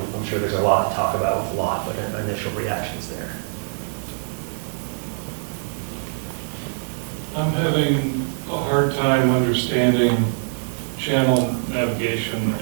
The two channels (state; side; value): silent; left; digital silence